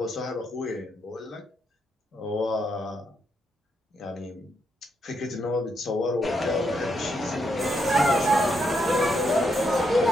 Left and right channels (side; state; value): both; normal; correlation 0.79